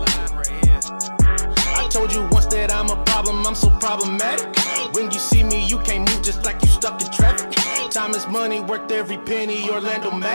I told you once that I'm a problem, I'm so problematic. When you see me, you can't move just like you stuck in traffic. Time is money, worked every penny, Orlando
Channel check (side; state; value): both; inverted; correlation -1.00